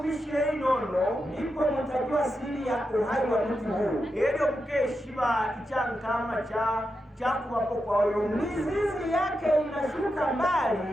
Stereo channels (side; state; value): both; normal; correlation 0.87